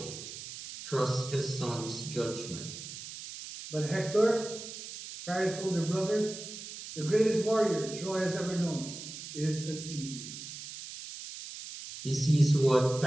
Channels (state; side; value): noise; right; hiss, 11 dB below the sound